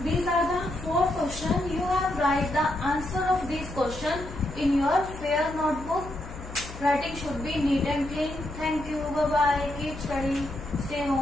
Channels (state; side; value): noise; left; hum, 13 dB below the sound